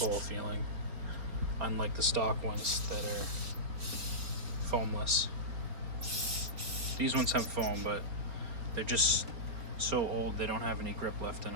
feeling, unlike the stock ones that are foamless. These ones have foam, but they're just so old they don't have any grip left in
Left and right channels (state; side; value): late; left; 4.3 ms